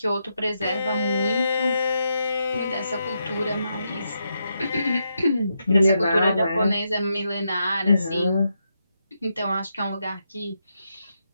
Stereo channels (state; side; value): inverted; both; correlation -0.83